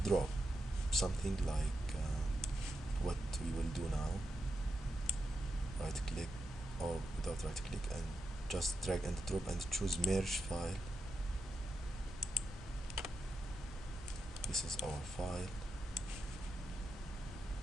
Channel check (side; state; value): both; normal; correlation 0.87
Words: drop something like what we will do now. Right click, or without right click, and just drag and drop and choose merge file. This is our file.